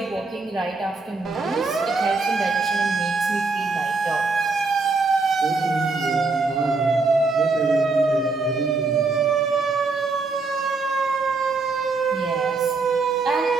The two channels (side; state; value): left; quieter; 3.9 dB